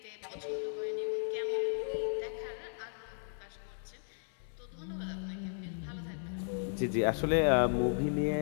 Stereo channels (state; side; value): silent; right; digital silence